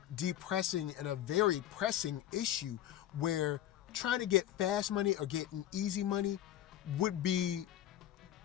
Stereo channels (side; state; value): right; quieter; 12.0 dB